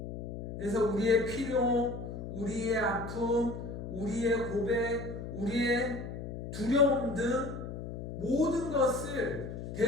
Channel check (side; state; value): left; noise; hum, 8 dB below the sound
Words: 그래서 우리의 필요, 우리의 아픔, 우리의 고백, 우리의 두려움 등 모든 것을